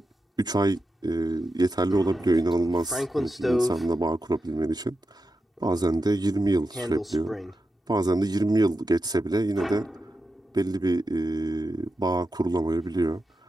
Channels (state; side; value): normal; both; correlation 0.89